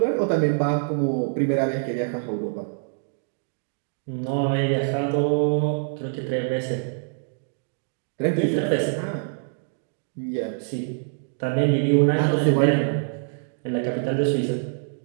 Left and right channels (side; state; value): left; silent; digital silence